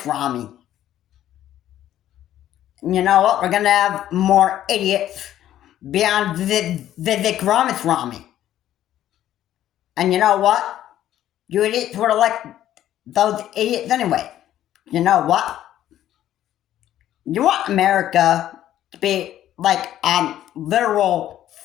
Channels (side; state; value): right; quieter; 12.2 dB